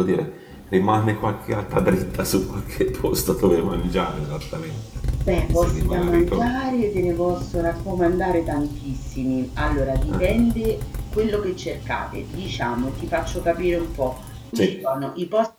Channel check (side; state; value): both; identical; correlation 1.00